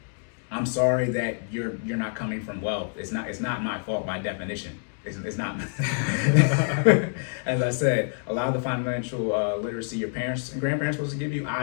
I'm sorry that you're not coming from wealth. It's not my fault by definition. It's not. As I said, a lot of the financial literacy your parents and grandparents supposed to give you,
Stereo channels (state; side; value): silent; right; 55 dB below the other